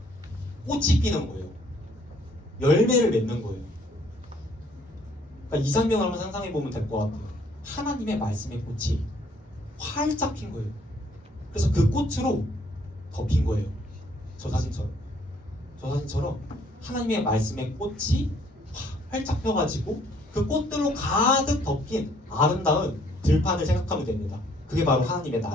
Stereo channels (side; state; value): both; normal; correlation 0.63